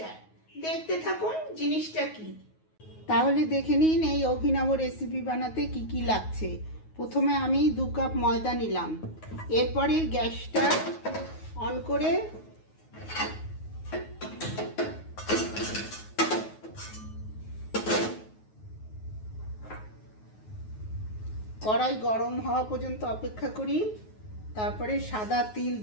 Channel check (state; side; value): late; right; 9.4 ms